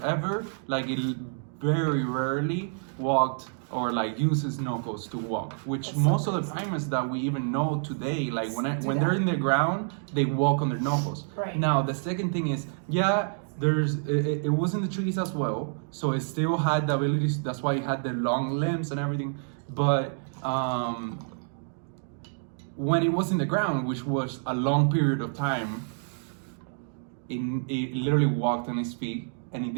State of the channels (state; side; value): silent; left; digital silence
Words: ever, like it very rarely walked or like uses knuckles to walk, which That's most so of the crazy. primates that we even know today, like when Do they're that. in the ground, they walk on their knuckles. Right. Now the second thing is, it was in the trees as well, so it still had the abilities. That's why it had the long limbs and everything. But when it was in the ground, which was a long period of time, it literally walked on its feet and it